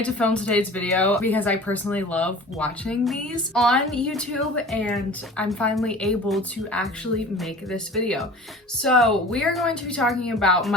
to film today's video because I personally love watching these on YouTube and I'm finally able to actually make this video. So we are going to be talking about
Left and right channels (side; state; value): both; normal; correlation 0.41